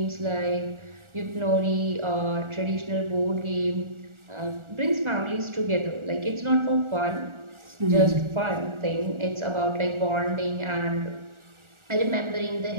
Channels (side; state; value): left; late; 1.4 ms